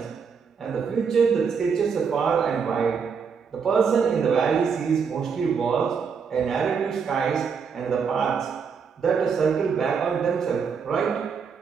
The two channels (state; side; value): quieter; left; 6.1 dB